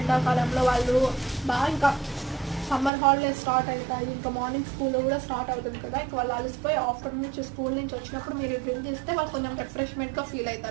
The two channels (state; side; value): drops out; left; at 2.9 s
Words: వాళ్ళు బాగా ఇంకా సమ్మర్ హాలిడేస్ స్టార్ట్ అవుతాయి, ఇంకా మార్నింగ్ స్కూల్ కూడా స్టార్ట్ అవుతుంది కదా. ఇంకా వాళ్ళు అలసిపోయి ఆఫ్టర్నూన్ నుంచి స్కూల్ నుంచి వచ్చినప్పుడు మీరు డ్రింక్ ఇస్తే వాళ్ళు కొంచెం రిఫ్రెష్మెంట్గా ఫీల్